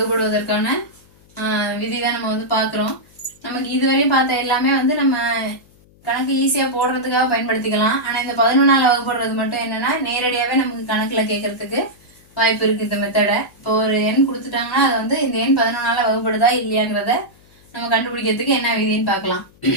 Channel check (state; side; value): noise; left; hum, 29 dB below the sound